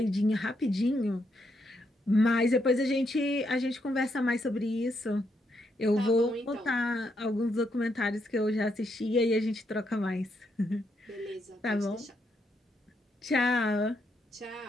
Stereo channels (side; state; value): both; normal; correlation 0.78